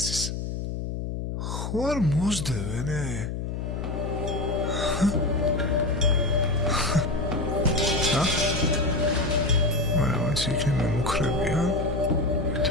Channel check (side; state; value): left; noise; hum, 4 dB below the sound